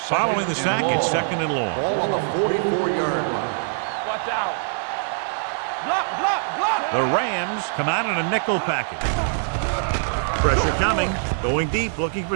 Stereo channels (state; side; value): silent; left; digital silence